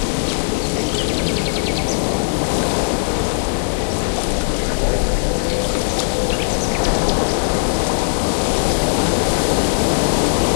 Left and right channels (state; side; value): silent; right; 67 dB below the other